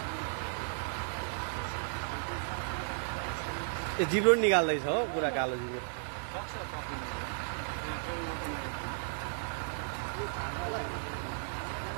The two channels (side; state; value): left; silent; 55 dB below the other